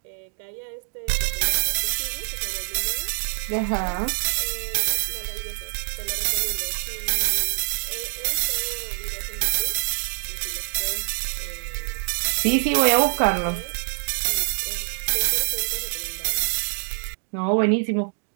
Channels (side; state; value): left; silent; 62 dB below the other